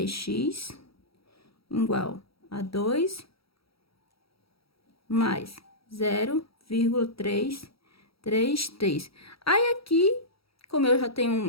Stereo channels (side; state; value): right; late; 0.76 ms